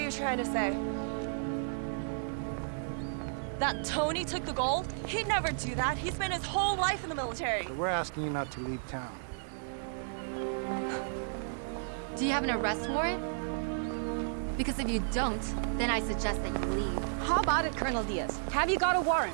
trying to say? That Tony took the gold? He'd never do that. He spent his whole life in the military. But we're asking you not to leave town. Do you have an arrest warrant? Because if you don't, then I suggest that you leave. How about it, Colonel Diaz? Have you got a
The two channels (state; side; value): silent; left; digital silence